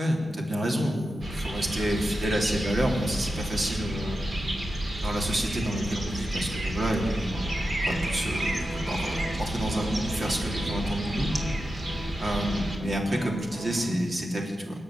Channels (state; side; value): normal; both; correlation 0.90